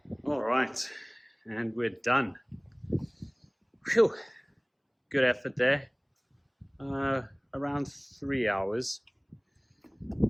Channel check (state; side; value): identical; both; correlation 1.00